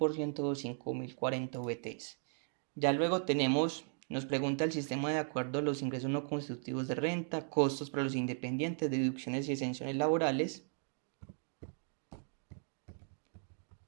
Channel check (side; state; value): left; silent; 53 dB below the other